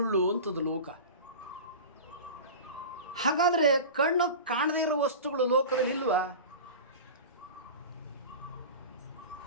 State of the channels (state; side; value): inverted; both; correlation -0.32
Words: ಅಂತದ್ದು ಲೋಕ. ಹಾಗಾದರೆ ಕಣ್ಣು ಕಾಣದೇ ಇರೋ ವಸ್ತುಗಳು ಲೋಕದಲ್ಲಿ ಇಲ್ವಾ?